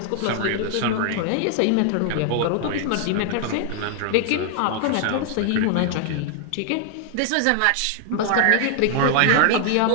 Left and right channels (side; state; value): both; different; correlation 0.00